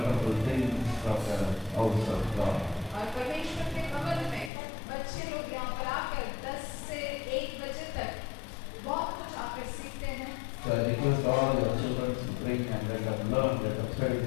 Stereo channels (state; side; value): drops out; right; at 4.5 s